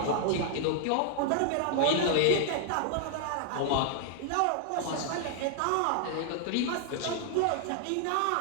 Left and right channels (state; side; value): different; both; correlation -0.01